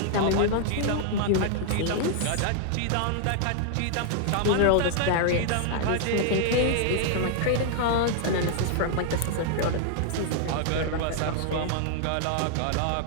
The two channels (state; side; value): different; both; correlation -0.01